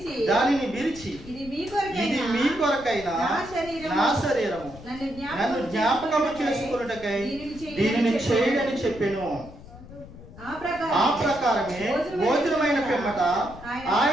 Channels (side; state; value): left; noise; rumble, 17 dB below the sound